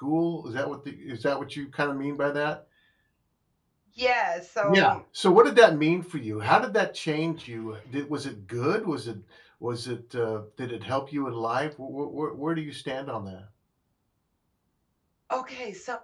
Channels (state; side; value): identical; both; correlation 1.00